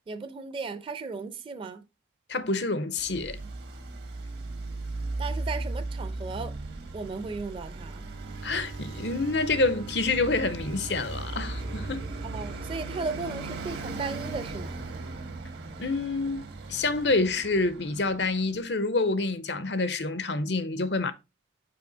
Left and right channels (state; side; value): normal; both; correlation 0.25